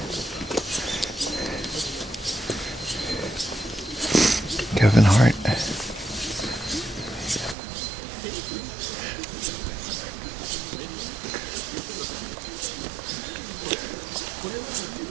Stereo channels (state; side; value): drops out; left; at 7.6 s